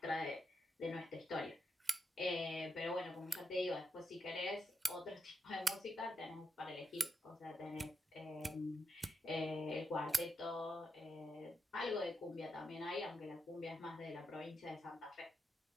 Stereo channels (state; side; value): normal; both; correlation 0.85